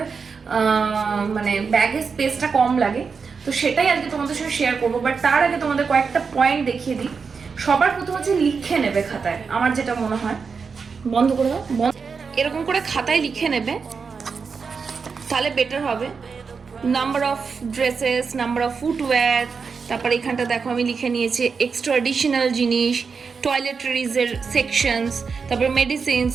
মানে ব্যাগের স্পেসটা কম লাগে। তো সেটাই আজকে তোমাদের সঙ্গে শেয়ার করবো। বাট তার আগে তোমাদের কয়েকটা পয়েন্ট দেখিয়ে দিই। সবার প্রথম হচ্ছে লিখে নেবে খাতায়, আমার যেটা মনে হয়। বন্ধ করে দাও, এরকম করে খাতায় লিখে নেবে, তাহলে বেটার হবে। Number of dresses, number of footwear, তারপরে এখানটা দেখো আমি লিখে নিয়েছি এক্সট্রা অ্যাডিশনাল জিনিস, টয়লেটরিজের সেকশনস, তারপরে medicines,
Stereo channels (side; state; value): left; quieter; 5.4 dB